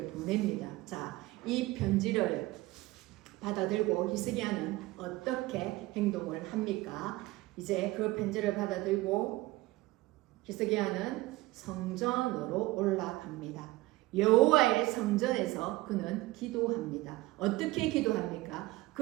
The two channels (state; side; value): quieter; left; 19.5 dB